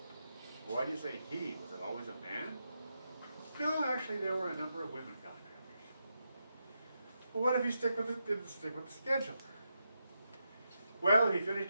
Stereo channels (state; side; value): inverted; both; correlation -0.85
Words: "Why do you say he? Was it always a man?" "No, actually there were a number of women contractors." "Well, what if he didn't stick with the schedule?" "Well, if he